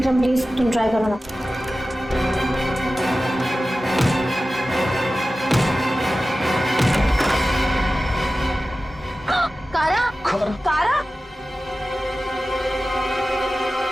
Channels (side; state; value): both; normal; correlation 0.95